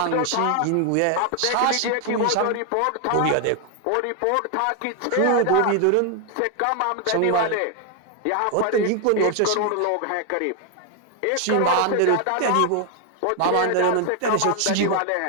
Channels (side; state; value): both; different; correlation 0.00